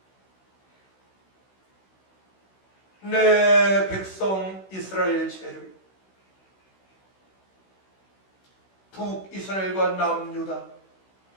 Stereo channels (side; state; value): right; late; 16 ms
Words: 내 백성 이스라엘 죄를 북이스라엘과 남유다